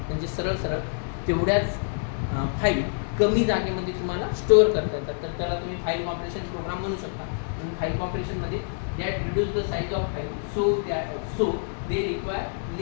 म्हणजे सरळ सरळ तेवढ्याच फाईल कमी जागेमध्ये तुम्हाला स्टोअर करता येतात. तर त्याला तुम्ही फाईल कॉम्प्रेशन प्रोग्राम म्हणू शकता. म्हणून फाईल कॉम्प्रेशनमध्ये that reduce the size of file so they require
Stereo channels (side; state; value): right; silent; 61 dB below the other